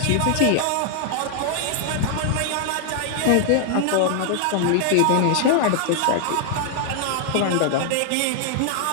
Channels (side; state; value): both; different; correlation 0.00